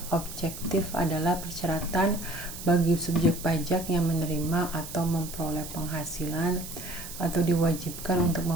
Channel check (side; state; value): right; noise; hiss, 11 dB below the sound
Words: objektif? Adalah persyaratan bagi subjek pajak yang menerima atau memperoleh penghasilan atau diwajibkan untuk